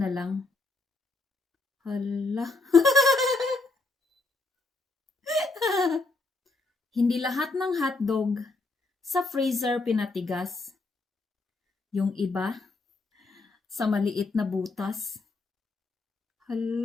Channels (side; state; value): right; quieter; 3.4 dB